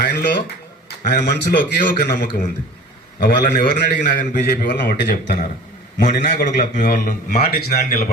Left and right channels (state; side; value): normal; both; correlation 0.43